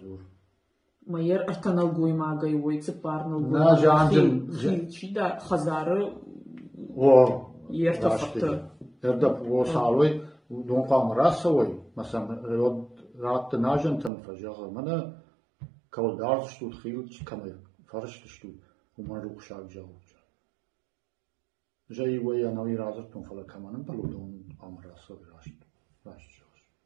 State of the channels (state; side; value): drops out; left; at 14.1 s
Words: ما ير ارتنال قوي ما قوي ويتسبار نلقوي نا جانجم خيل دا خزار و يرتفقت يردب و سالوي دون قام راسوي مثلا رات ناجن تم فجاه منا كول دارت شتو خيل كما فرشت شتو وما روح شاق جاوج جاي ويا نوي رازتون فلا كمان بلودون امر راسو راشت